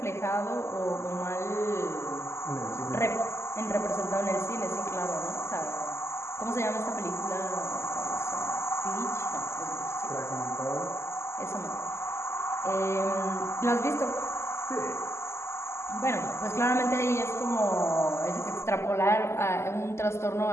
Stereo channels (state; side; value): late; right; 0.13 ms